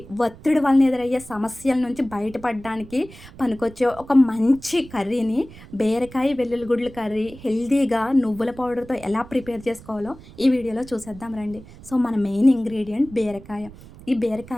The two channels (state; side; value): noise; right; rumble, 19 dB below the sound